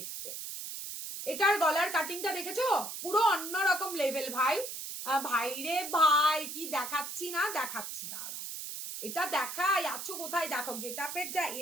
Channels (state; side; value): noise; right; hiss, 7 dB below the sound